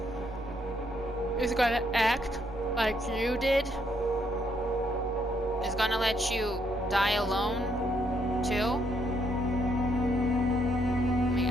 gonna act like you did? Is gonna let you die alone too? I mean,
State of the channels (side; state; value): right; noise; hum, 12 dB below the sound